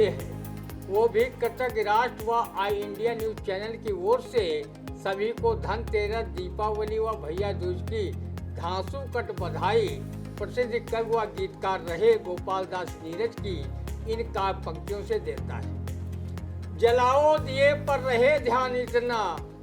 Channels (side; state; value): both; identical; correlation 1.00